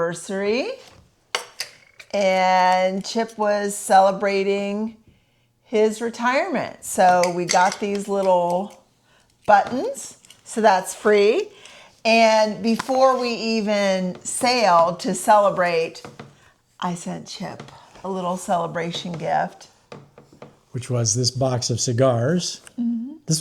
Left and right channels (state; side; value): identical; both; correlation 1.00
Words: and Chip was celebrating his retirement. So we got these little buttons, so that's free. And before we even sailed to celebrate, I sent Chip a little celebration gift. Which was this box of cigars. Mm-hmm.